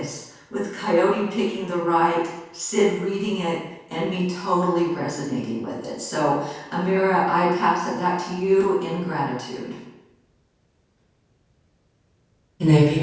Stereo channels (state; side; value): identical; both; correlation 1.00